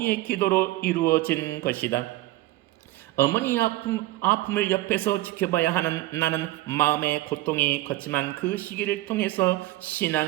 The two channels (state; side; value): quieter; left; 16.8 dB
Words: 기도로 이루어진 것이다. 어머니의 아픔을 옆에서 지켜봐야 하는 나는 마음의 고통이 컸지만 그 시기를 통해서